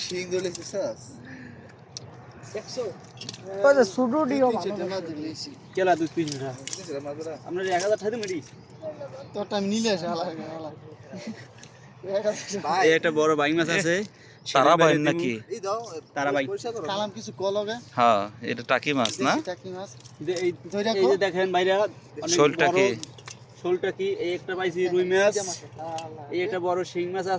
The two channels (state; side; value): identical; both; correlation 1.00